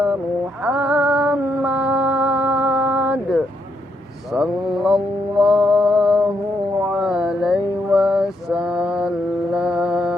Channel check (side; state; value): both; normal; correlation 0.77